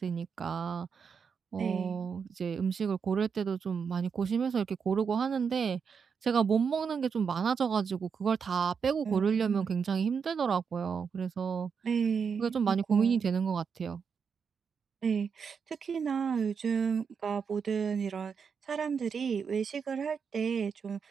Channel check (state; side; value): quieter; left; 6.2 dB